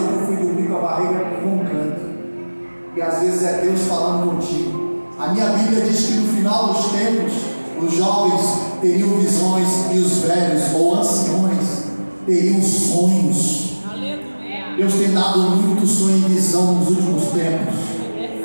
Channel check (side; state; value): both; inverted; correlation -1.00